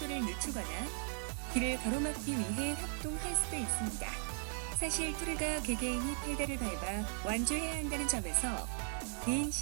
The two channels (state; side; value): silent; left; 53 dB below the other